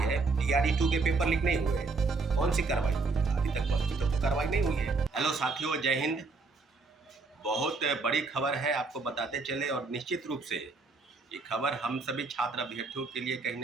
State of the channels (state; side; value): quieter; left; 4.0 dB